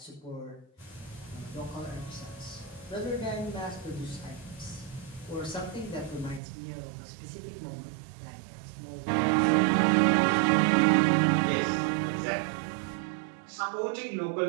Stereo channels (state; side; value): drops out; left; at 6.4 s